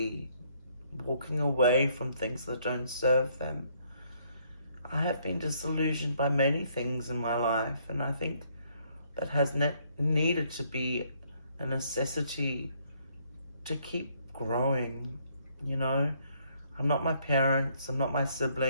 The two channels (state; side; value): inverted; both; correlation -0.68